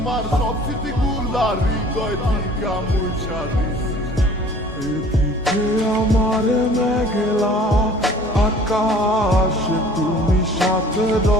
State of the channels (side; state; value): both; normal; correlation 0.50